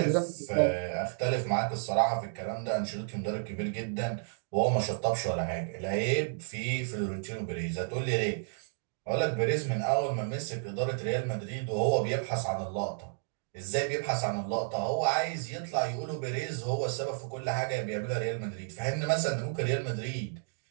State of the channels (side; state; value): left; silent; digital silence